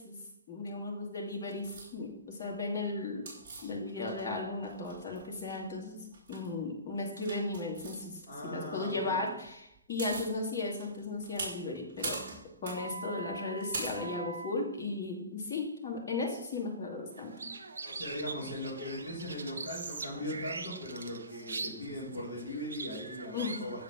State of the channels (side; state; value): both; inverted; correlation -0.37